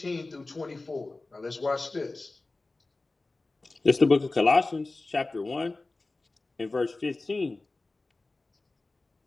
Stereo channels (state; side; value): quieter; right; 3.3 dB